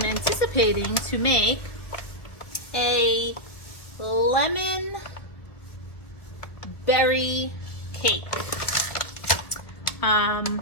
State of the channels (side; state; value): right; late; 1.7 ms